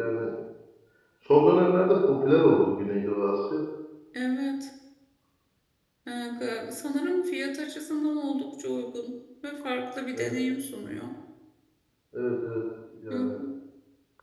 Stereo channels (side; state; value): both; identical; correlation 1.00